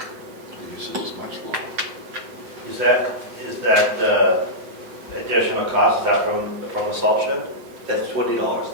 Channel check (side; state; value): left; late; 7.6 ms